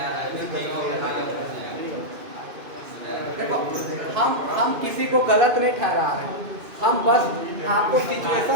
देखो, हम किसी को गलत नहीं ठहरा रहे हैं, हम बस आपको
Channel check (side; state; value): left; late; 2.6 ms